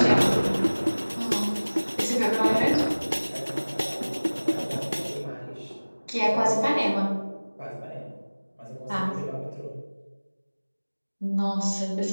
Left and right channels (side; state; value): both; inverted; correlation -1.00